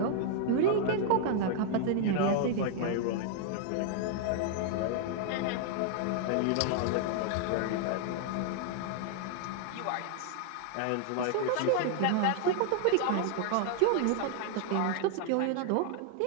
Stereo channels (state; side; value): different; both; correlation 0.00